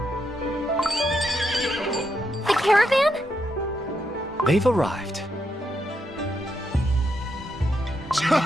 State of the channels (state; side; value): normal; both; correlation 0.81